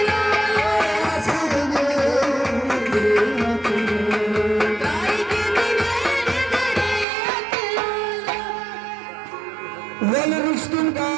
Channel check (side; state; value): left; drops out; at 7.1 s